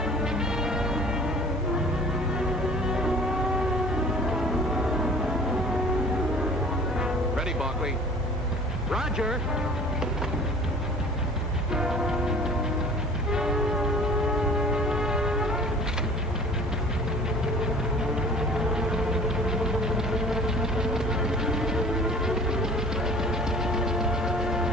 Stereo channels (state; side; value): normal; both; correlation 0.47